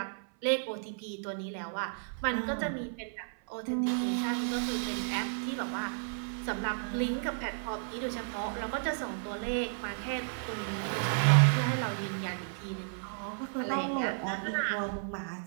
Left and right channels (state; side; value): silent; left; 56 dB below the other